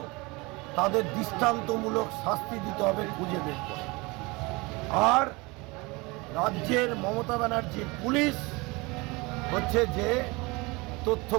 তাদের দৃষ্টান্তমূলক শাস্তি দিতে হবে, খুঁজে বের করে। আর রাজ্যের মমতা ব্যানার্জির পুলিশ হচ্ছে যে তথ্য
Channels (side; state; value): left; quieter; 25.1 dB